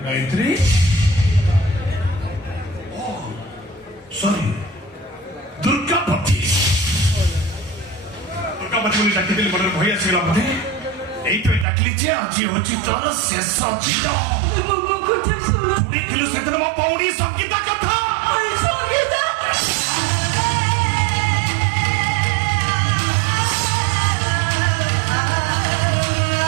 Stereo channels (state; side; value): drops out; left; at 11.7 s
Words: sorry दुर्गापति बोली डाकिदेली मन भय आसगला बोधे এইটাই ডাকলি যে আজি হচ্ছে তোর শেষ দিন শুনিলু সেদিন মো পৌড়ি সঙ্গীতা কথা সঙ্গীতা